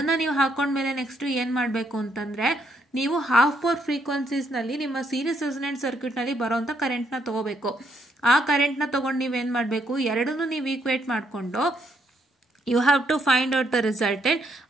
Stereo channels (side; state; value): both; normal; correlation 0.74